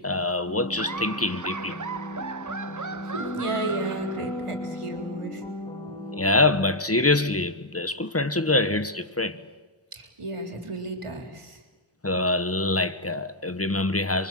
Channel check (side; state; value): both; normal; correlation -0.03